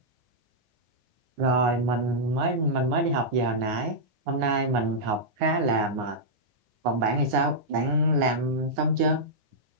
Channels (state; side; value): late; left; 9.7 ms